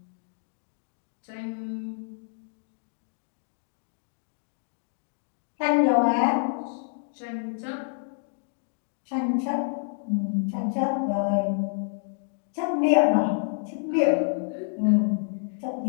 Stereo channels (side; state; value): right; silent; digital silence